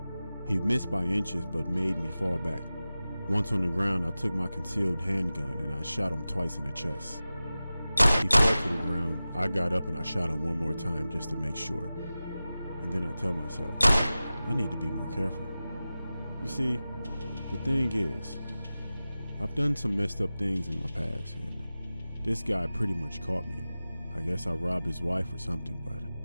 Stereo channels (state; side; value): inverted; both; correlation -0.96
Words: He missed by inches but made me fall back. Once on the ground, I took my concealed handgun and I shot him twice in the chest. He fell to the ground. I got up and I shot him one more time just to make sure. And then I tell myself, I need to be more careful. You see, the thing is, I've done some messed up things in my past, and this guy pretty much caught me. I guess I robbed his wife or something, but